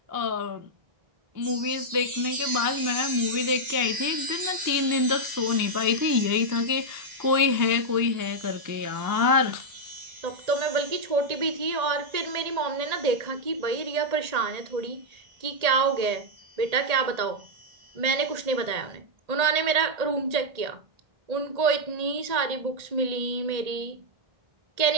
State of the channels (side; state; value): left; late; 1.8 ms